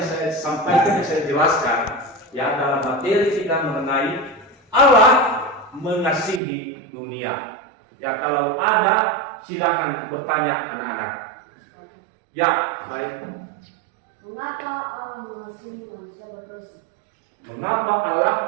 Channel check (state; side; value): drops out; left; at 6.4 s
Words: saya sampaikan, yang saya jelaskan, ya dalam materi kita mengenai Allah mengasihi dunia. Ya kalau ada, silakan bertanya anak-anak. Ya, baik. Mengapa Allah mengasihi manusia berdosa? Mengapa